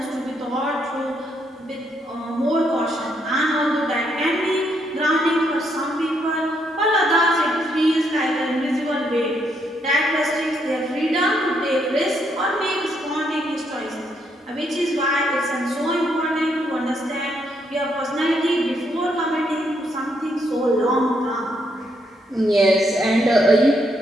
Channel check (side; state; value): both; normal; correlation 0.75